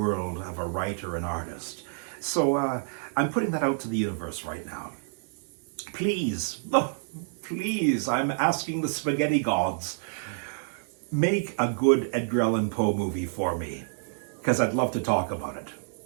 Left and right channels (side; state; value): left; silent; digital silence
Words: of a writer and artist. So I'm putting that out to the universe right now. Please, please, I'm asking the spaghetti gods, make a good Edgar Allan Poe movie for me, because I'd love to talk about it.